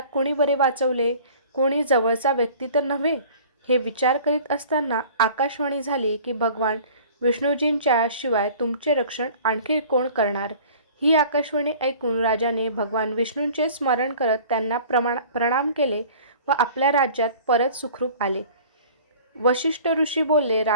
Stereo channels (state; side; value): inverted; both; correlation -0.47